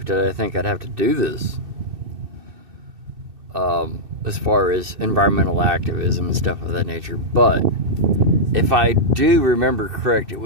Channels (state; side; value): late; left; 2.6 ms